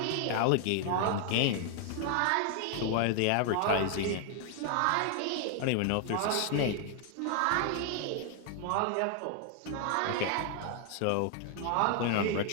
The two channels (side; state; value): both; different; correlation 0.00